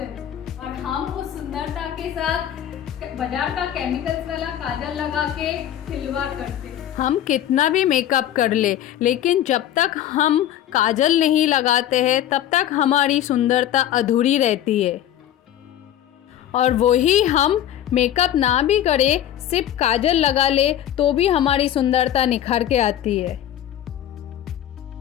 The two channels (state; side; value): quieter; right; 11.3 dB